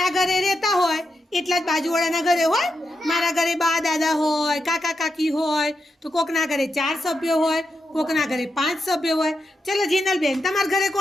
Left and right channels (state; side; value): normal; both; correlation 0.85